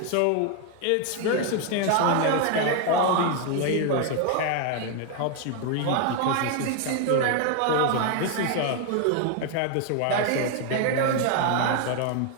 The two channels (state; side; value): different; both; correlation 0.01